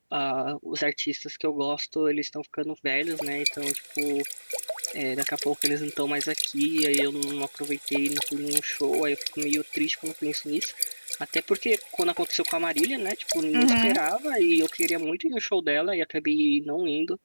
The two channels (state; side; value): inverted; both; correlation -1.00